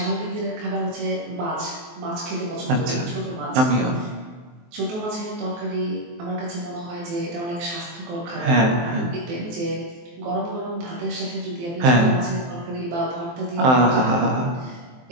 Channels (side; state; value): left; late; 23 ms